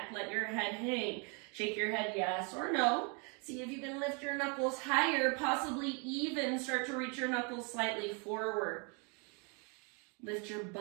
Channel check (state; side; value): quieter; left; 33.3 dB